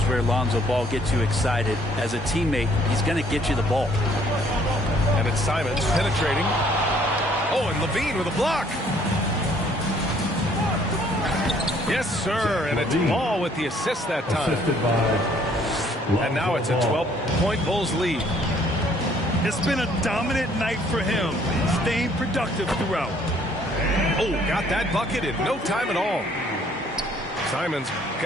where Lonzo Ball gets you excited. As a teammate, he's going to get you the ball. And it's Simons penetrating. Oh, and Levine with a block. Yes, sir. And it's Ball with the assist that time. And now it's a 12-point Bulls lead. It's been a dominant night for him, staying productive throughout. Oh, got that bucket in no time at all. Simons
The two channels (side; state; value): both; normal; correlation 0.61